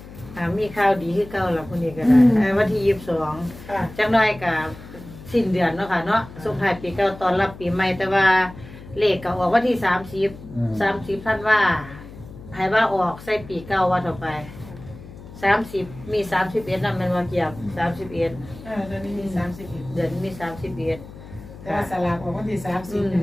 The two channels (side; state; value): left; noise; hum, 16 dB below the sound